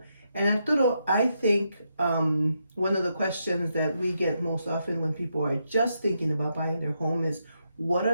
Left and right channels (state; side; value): inverted; both; correlation -0.81